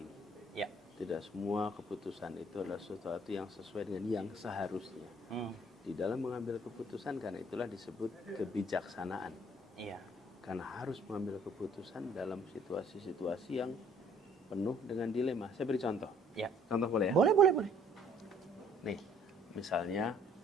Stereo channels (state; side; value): normal; both; correlation 0.59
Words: ya. Tidak semua keputusan itu adalah sesuatu yang sesuai dengan yang seharusnya. Di dalam mengambil keputusan, karena itulah disebut kebijaksanaan. Iya. Karena harus mengambil keputusan dalam situasi-situasi yang penuh dengan dilema. Saya beri contoh. Ya. Contoh boleh ya? Boleh. Nih, misalnya